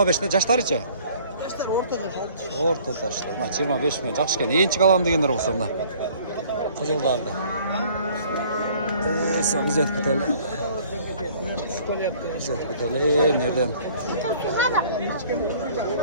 жаштары че? Орта таштар. 25-те, жақшы екен. Енчік алам дегендер болса мына. Қызылдарды. Сол біз өтіп кетелі. Мерден.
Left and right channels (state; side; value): inverted; both; correlation -0.54